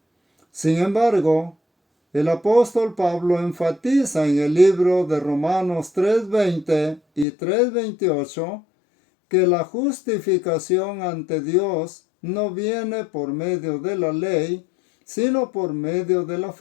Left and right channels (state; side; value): drops out; right; at 7.2 s